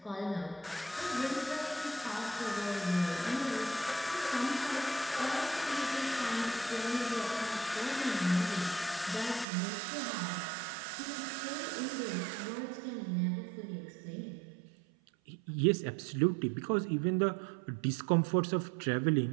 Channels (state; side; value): drops out; left; at 9.5 s